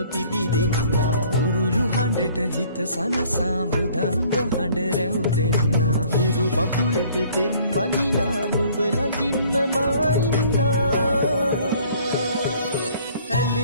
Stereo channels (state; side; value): inverted; both; correlation -0.56